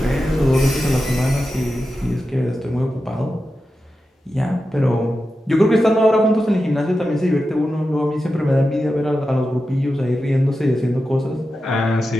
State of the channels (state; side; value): normal; both; correlation 0.91